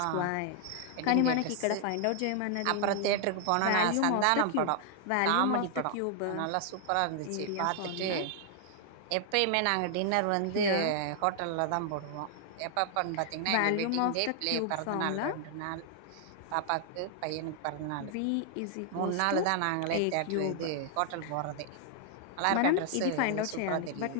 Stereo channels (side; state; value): both; different; correlation 0.00